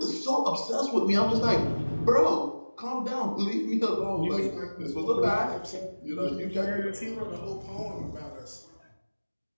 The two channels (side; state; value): both; inverted; correlation -1.00